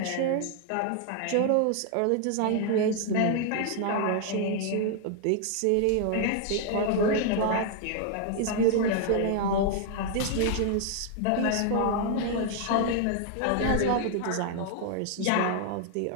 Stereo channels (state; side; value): different; both; correlation 0.00